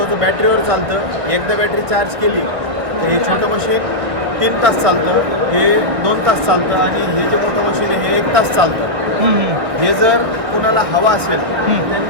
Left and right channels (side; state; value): left; late; 1.7 ms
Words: बॅटरीवर चालतं. एकदा बॅटरी चार्ज केली तर हे छोटं मशीन 3 तास चालतं, हे 2 तास चालतं आणि हे जे मोठं मशीन आहे हे 1 तास चालतं. हे जर कुणाला हवा असेल